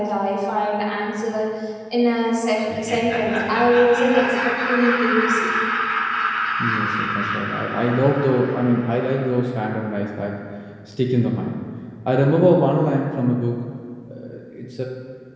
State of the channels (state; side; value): identical; both; correlation 1.00